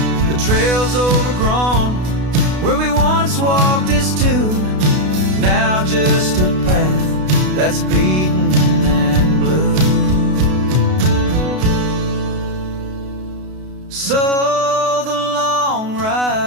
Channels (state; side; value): late; left; 32 ms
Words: The trail's overgrown where we once walked as two, now just a path that's beaten and blue. So the long